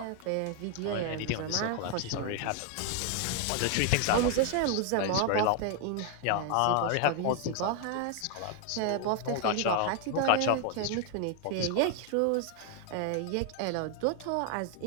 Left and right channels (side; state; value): both; different; correlation 0.00